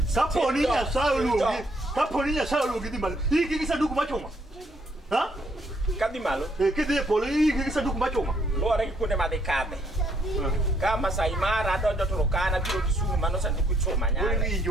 Kaponi nya saulugi. Kaponi nya saulugi di mal. Iki kisa duku machoma. Ha? Kadi malo. Kide polo iki kisa duku machoma. Lore kune madekade. Kama Saimara dojo tulokana biro Kisumu manosa ndikuchoma nyanga.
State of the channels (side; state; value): both; normal; correlation 0.70